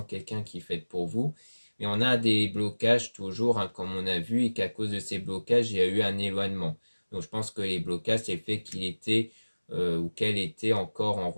quelqu'un qui est fait pour vous. Mais on a des blocages toujours, comme on a vu, et qu'à cause de ces blocages, il y a eu un éloignement. Donc je pense que les blocages, c'est le fait qu'il était ou qu'elle était encore en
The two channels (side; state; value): both; inverted; correlation -1.00